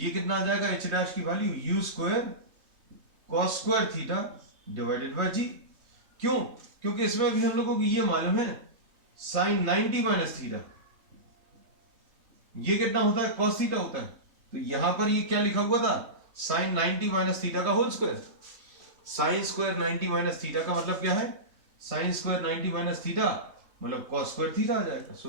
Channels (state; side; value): late; left; 3.2 ms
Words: कितना आ जाएगा, एच डैश की value u square cos square theta divided by g. क्यों? क्योंकि इसमें भी हम लोगों को ये मालूम है साइन 90 माइनस थीटा ये कितना होता है, कॉस थीटा होता है। तो यहां पर ये क्या लिखा हुआ था, साइन 90 माइनस थीटा का whole square. Sine square 90 minus theta का मतलब क्या है, साइन स्क्वायर 90 माइनस थीटा मतलब कॉस स्क्वायर थीटा आ जाएगा। So